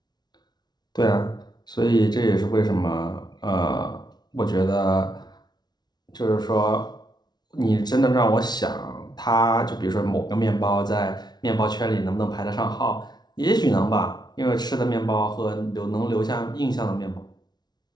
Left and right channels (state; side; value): late; right; 0.20 ms